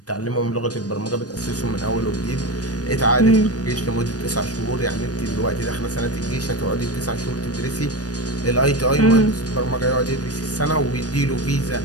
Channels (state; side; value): late; right; 0.68 ms